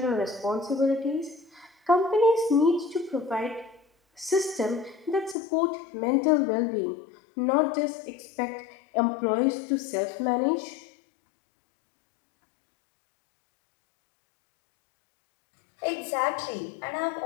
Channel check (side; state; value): right; drops out; at 5.4 s